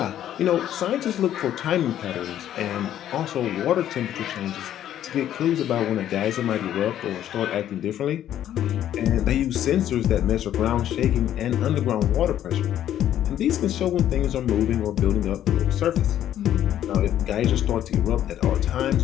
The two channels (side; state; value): right; quieter; 11.3 dB